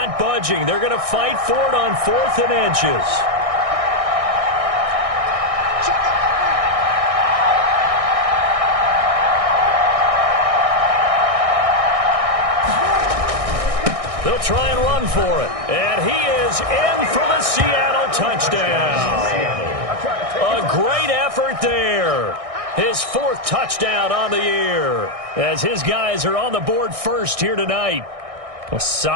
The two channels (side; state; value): left; late; 1.6 ms